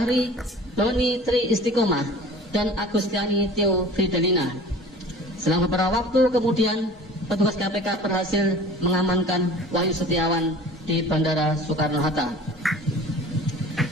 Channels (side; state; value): both; normal; correlation 0.43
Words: Doni Tri Istiqomah, dan Agustiani Tio Fidelina. Selama beberapa waktu kemudian, petugas KPK berhasil mengamankan Wahyu Setiawan di Bandara Soekarno-Hatta.